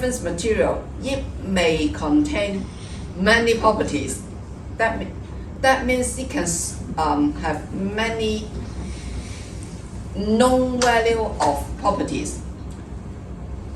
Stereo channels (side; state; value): both; identical; correlation 1.00